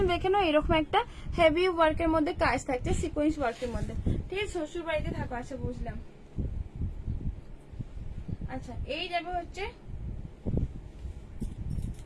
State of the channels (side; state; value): both; identical; correlation 1.00